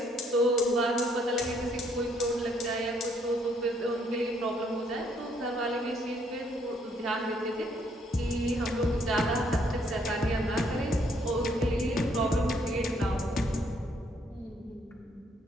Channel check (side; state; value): both; normal; correlation 0.68